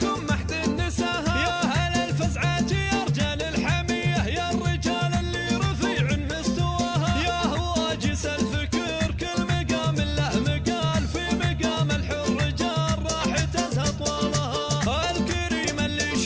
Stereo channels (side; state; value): both; identical; correlation 1.00